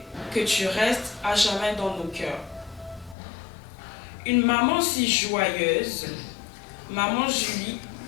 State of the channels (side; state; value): right; drops out; at 3.2 s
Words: que tu restes à jamais dans nos cœurs. Une maman si joyeuse, maman Julie,